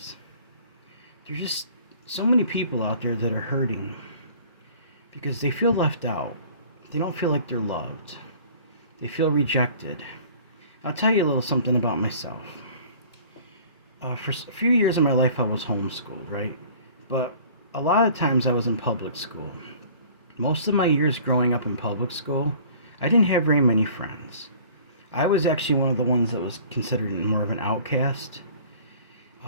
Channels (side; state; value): both; inverted; correlation -0.49